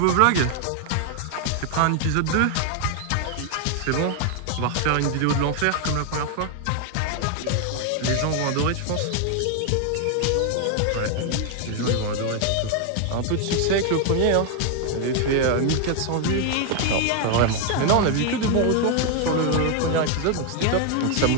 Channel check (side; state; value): both; different; correlation 0.01